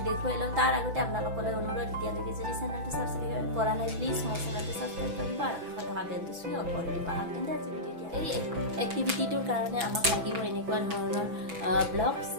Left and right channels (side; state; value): left; late; 6.1 ms